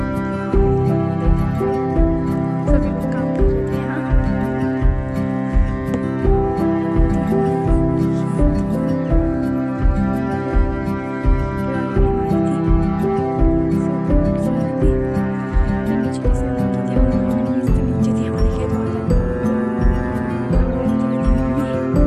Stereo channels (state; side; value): identical; both; correlation 1.00